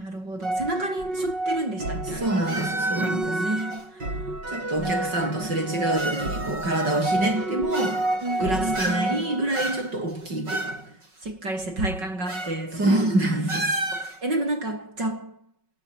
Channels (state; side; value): late; left; 5.4 ms